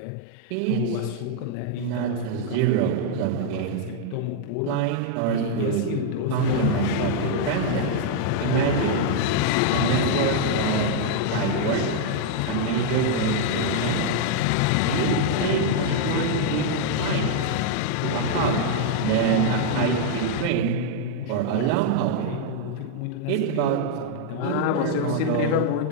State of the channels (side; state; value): both; different; correlation -0.01